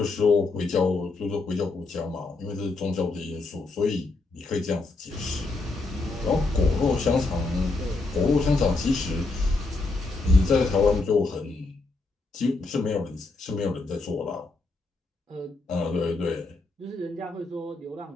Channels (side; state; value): right; quieter; 3.5 dB